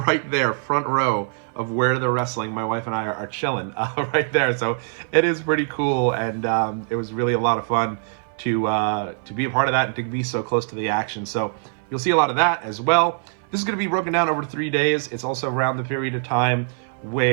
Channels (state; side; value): silent; left; 58 dB below the other